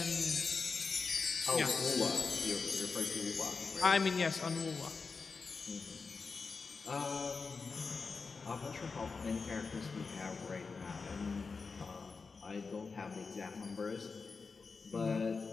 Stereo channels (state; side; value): quieter; right; 4.7 dB